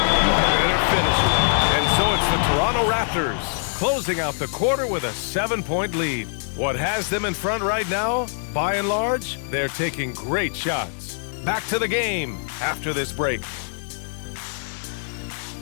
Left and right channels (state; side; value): silent; right; digital silence